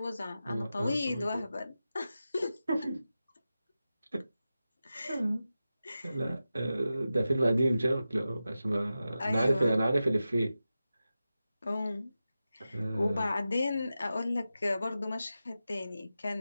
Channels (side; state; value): both; inverted; correlation -0.93